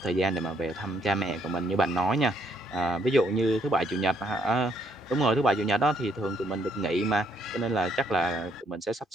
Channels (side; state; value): both; normal; correlation 0.71